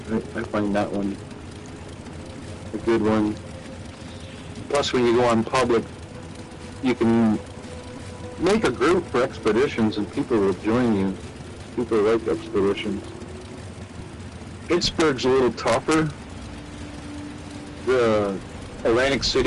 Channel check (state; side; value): identical; both; correlation 1.00